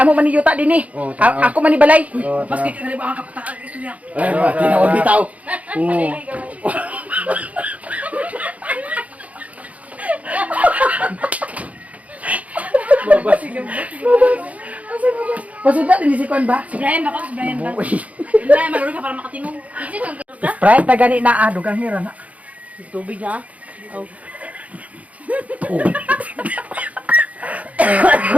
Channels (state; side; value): late; left; 0.069 ms